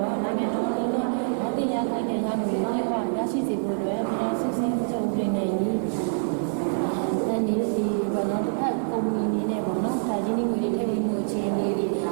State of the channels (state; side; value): silent; left; 60 dB below the other